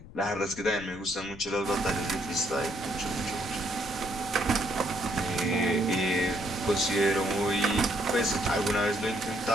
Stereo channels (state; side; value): noise; left; rumble, 17 dB below the sound